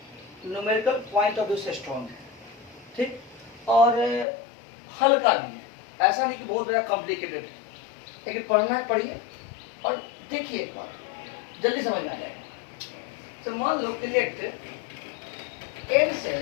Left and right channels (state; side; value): drops out; right; at 4.2 s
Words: numerical point of view से स्ट्रॉन्ग है, ठीक, और हल्का भी है। ऐसा नहीं कि बहुत ज़्यादा कॉम्प्लिकेटेड है, लेकिन पढ़ना है, पढ़िए और देखिए, एक बार जल्दी समझ में आ जाएगा। तो मान लो कि late n